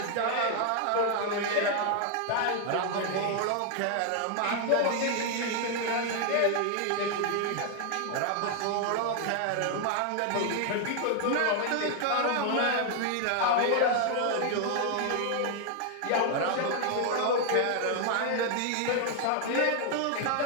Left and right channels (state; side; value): different; both; correlation 0.00